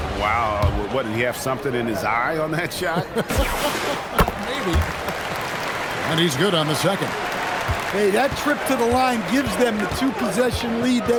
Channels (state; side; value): identical; both; correlation 1.00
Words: Wow, what, did he have something in his eye on that shot? Maybe. And he's good on the second. Hey, that trip to the line gives them the 2-possession lead